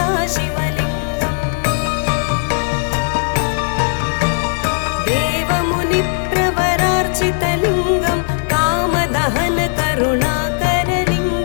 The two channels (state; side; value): silent; right; 60 dB below the other